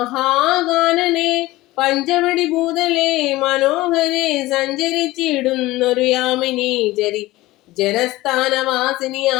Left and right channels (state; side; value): quieter; right; 18.4 dB